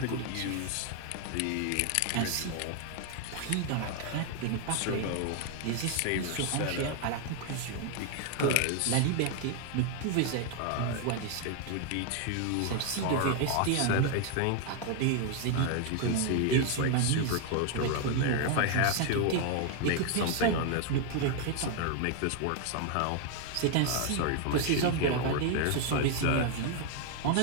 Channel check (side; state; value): both; different; correlation 0.01